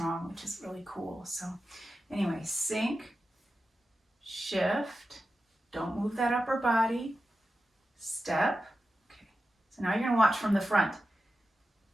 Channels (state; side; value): normal; both; correlation 0.91